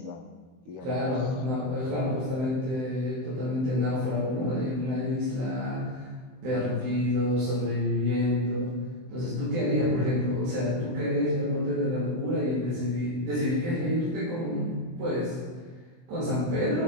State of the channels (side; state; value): left; late; 23 ms